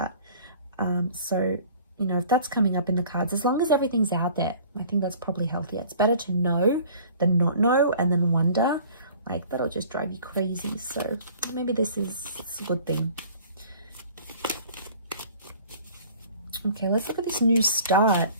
So, you know, if that's coming up in the cards, as long as everything's out there, I think that's probably healthier. It's better to know than not know and then wonder. Like, that'll just drive you crazy. So maybe it's a good thing. Okay, let's look at this new start.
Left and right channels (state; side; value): inverted; both; correlation -0.49